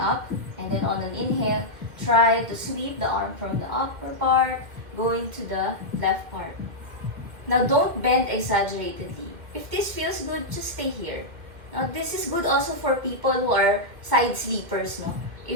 and then on an inhale, try to sweep the arm from the upper part, going to the left part. Now don't bend exaggeratedly. If this feels good, just stay here. Now this is good also for people who are side sleepers. No?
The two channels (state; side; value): late; left; 2.1 ms